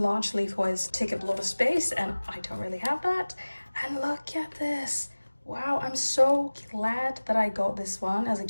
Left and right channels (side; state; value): both; inverted; correlation -1.00